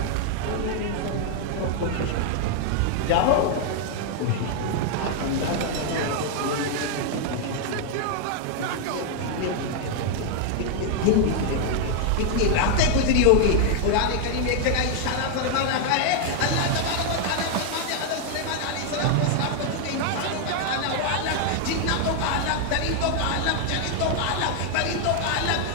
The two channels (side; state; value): both; different; correlation 0.00